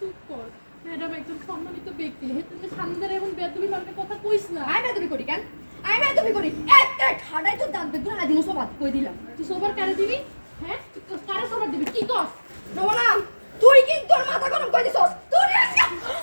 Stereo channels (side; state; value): both; inverted; correlation -1.00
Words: কর ম্যাডাম একজন সম্মানিত ব্যক্তি তুমি সামনে এমন বেদবি মানে কথা কইস না আই বেদবি করি কেন আই বেদবি করি একটা ঠাডাই তো দাঁত বেগুন আদিন সব কই দিলাম তুই সোবার কারে দিবি হ্যাঁ কারে সোবার দিবি কি কস রমনা তুই কি তোর মাথা গরম কই দিছস তুই আজকে